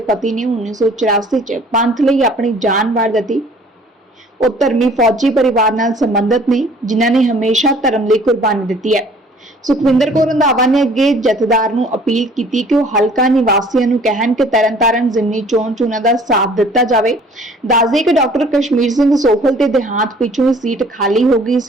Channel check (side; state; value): both; normal; correlation 0.53